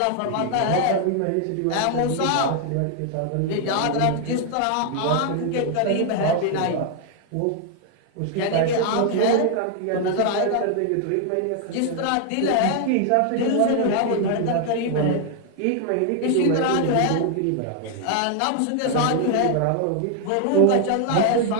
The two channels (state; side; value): different; both; correlation 0.00